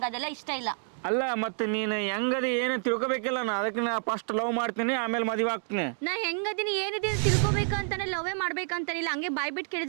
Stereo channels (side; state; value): left; silent; 59 dB below the other